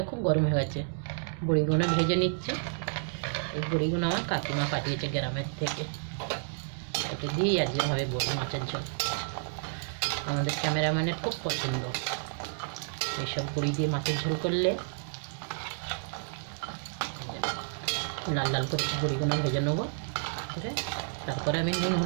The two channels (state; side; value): silent; left; digital silence